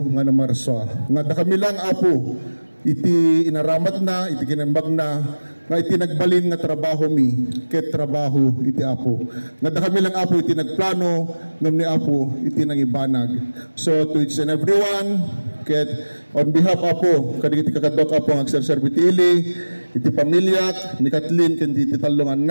nga na Marswa nga kami lang apo iti inaramat na iti kinembag na nga iti nagbalin nga trabaho mi ket trabaho iti Apo nga kami lang Apo iti nagplano ngem ni Apo iti nangibanag. So to each and everyone ket on behalf Apo kadagiti kakadok Apo ang agserserbi iti ili iti pamilya ni Kathleen ken iti talong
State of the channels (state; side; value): inverted; both; correlation -1.00